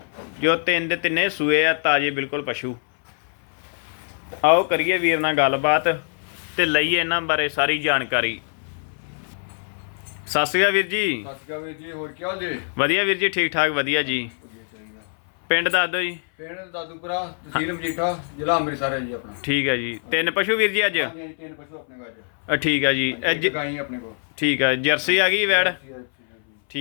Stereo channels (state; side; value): silent; right; 59 dB below the other